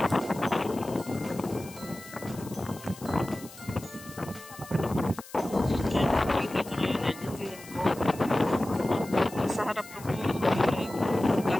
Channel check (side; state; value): left; noise; hiss, 18 dB below the sound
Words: Sa harap ko po ay